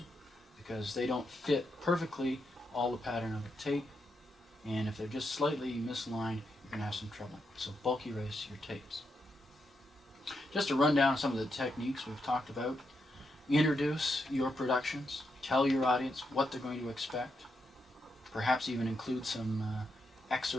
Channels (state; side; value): normal; both; correlation 0.82